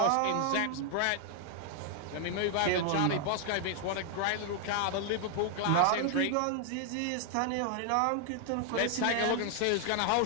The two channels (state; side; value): different; both; correlation 0.00